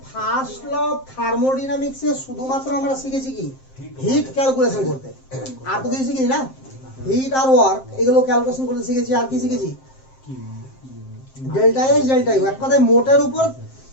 ফার্স্ট ল অফ থার্মোডাইনামিক্সে শুধুমাত্র আমরা শিখেছি কি হিট ক্যালকুলেশন করতে, আর তো কিছু শিখিনি না। হিট আর ওয়ার্ক এগুলো ক্যালকুলেশন করতে শিখেছি, আর কি শিখেছি ডেল্টা এস ডেল্টা ইউ, এক কথায় মোটের উপর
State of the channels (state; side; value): late; right; 7.6 ms